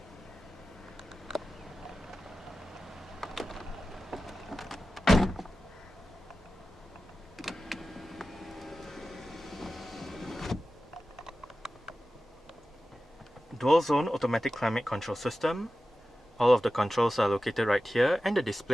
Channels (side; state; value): both; normal; correlation 0.94